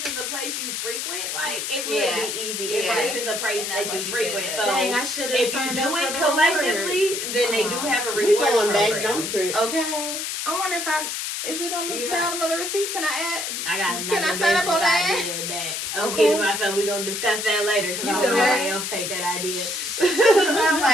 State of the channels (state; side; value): noise; left; hiss, 3 dB below the sound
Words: is a place you frequent, like it would Yeah. be easy. Yeah. If this is a place And that's that what you she frequent, said. so Dang, I should have if you signed do up it for the collectively, rewards. then they do have a We reward going back, program. don't trip. Okay. I wonder if is it on the Yeah. bottom of the receipt? Can I add? I got another Can I sign up on business that? idea that I'm Okay. kidding myself. We're gonna discuss that later because You I said don't know what? nobody else take that idea. I'm